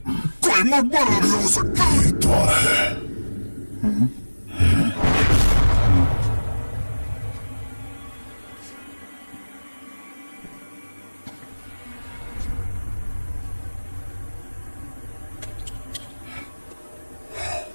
कोई मकबरा भी हो सकता है। ये द्वार है।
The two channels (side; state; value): both; inverted; correlation -1.00